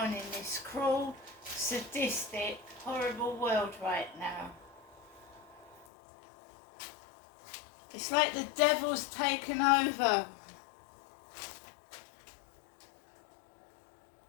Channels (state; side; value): drops out; right; at 5.9 s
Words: in this cruel, sadistic, horrible world right now. It's like the devil's taken over.